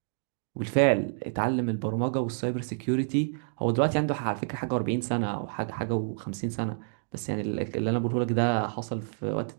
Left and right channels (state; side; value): silent; left; digital silence